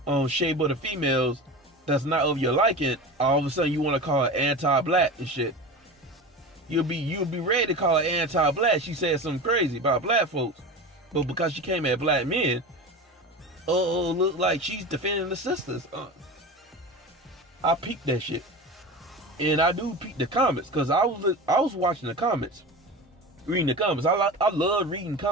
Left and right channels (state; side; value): normal; both; correlation 0.30